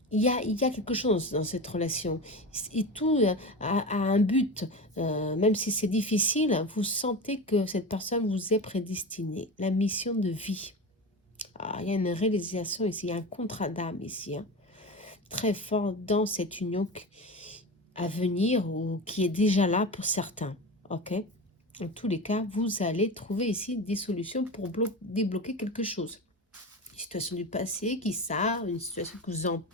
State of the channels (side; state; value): both; normal; correlation 0.26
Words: il y a quelque chose dans cette relation. Et tout a un but. Même si c'est difficile, vous sentez que cette personne vous est prédestinée. La mission de vie. Ah, il y a une réalisation ici, il y a un contrat d'âme ici. Hein, très fort dans cette union à venir ou qui est déjà là pour certains. Ok? En tous les cas, vous allez trouver ici des solutions pour débloquer quelque chose. Une situation du passé qui une situation qui vous